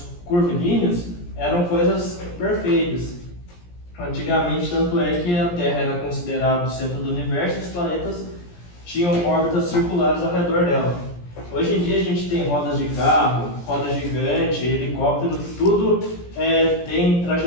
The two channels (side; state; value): right; late; 17 ms